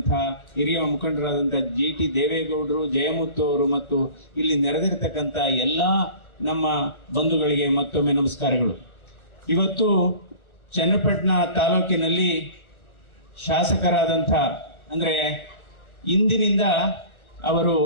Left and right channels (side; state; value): right; late; 1.3 ms